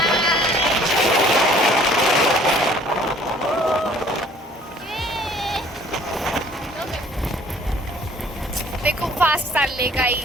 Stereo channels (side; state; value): both; normal; correlation 0.55